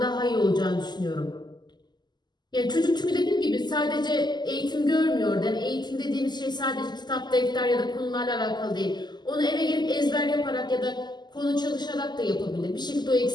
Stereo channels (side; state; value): right; late; 0.21 ms